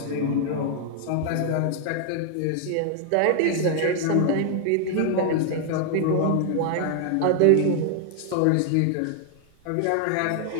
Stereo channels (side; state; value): both; different; correlation 0.00